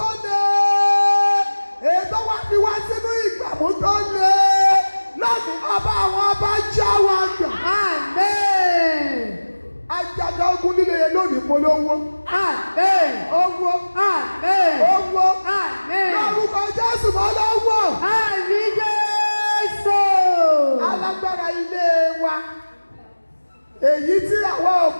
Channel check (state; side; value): inverted; both; correlation -1.00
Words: lé ètò wa fi wá sínú ìgbàmú tó lé lónìí ọba àwọn ọba já wa gbà. Àmín. Ajaga ogun líle yẹn lónìí polówó. Àmín. Owó. Àmín. Owó. Àmín. Lórúkọ Jésù mọ́ lọ́wọ́. Àmín Jésù. Alágbára ilé wa èyí tí àwọn